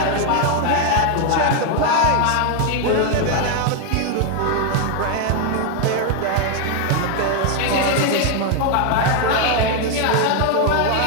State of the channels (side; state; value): both; different; correlation 0.01